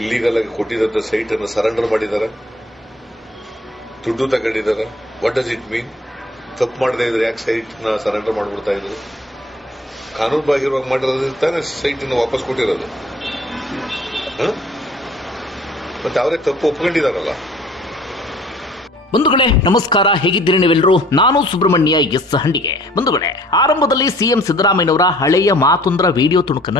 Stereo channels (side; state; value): both; normal; correlation 0.54